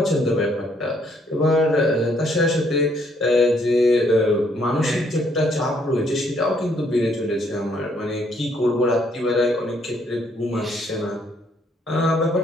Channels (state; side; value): normal; both; correlation 0.68